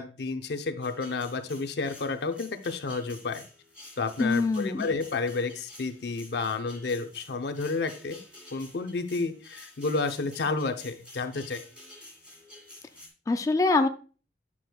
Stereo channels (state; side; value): quieter; right; 3.3 dB